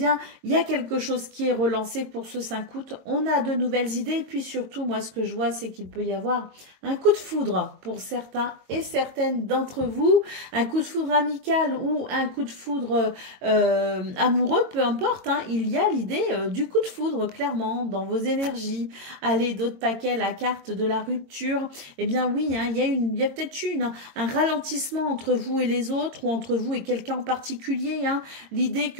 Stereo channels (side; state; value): left; late; 22 ms